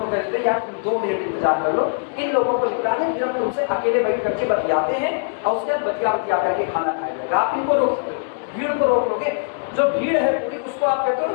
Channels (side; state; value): right; silent; digital silence